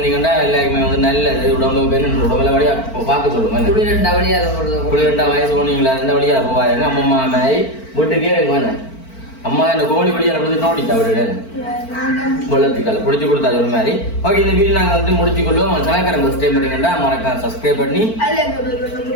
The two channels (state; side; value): late; right; 4.5 ms